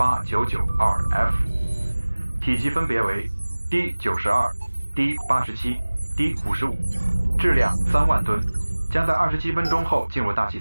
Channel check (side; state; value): both; inverted; correlation -1.00